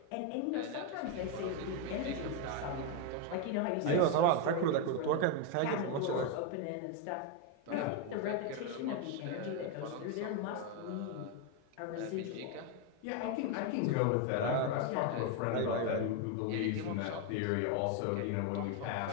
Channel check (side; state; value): both; different; correlation 0.02